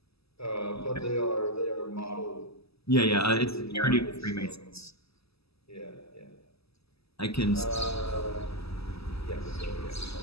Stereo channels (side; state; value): right; late; 0.78 ms